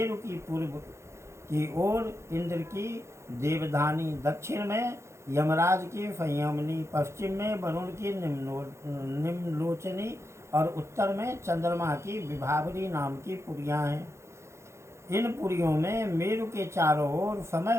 की पूर्व की ओर इंद्र की देवधानी, दक्षिण में यमराज की संयमनी, पश्चिम में वरुण की निम्नलोचनी और उत्तर में चंद्रमा की विभावरी नाम की पुरियां हैं। इन पुरियों में मेरु के चारों ओर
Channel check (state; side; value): late; left; 0.13 ms